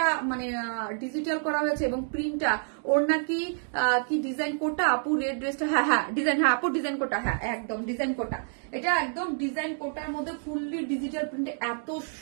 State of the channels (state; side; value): silent; left; digital silence